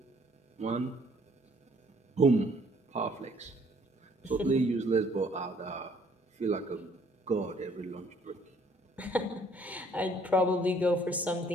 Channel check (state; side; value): normal; both; correlation 0.62